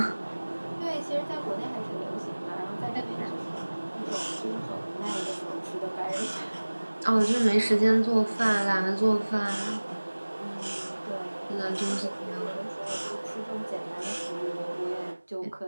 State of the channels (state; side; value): inverted; both; correlation -1.00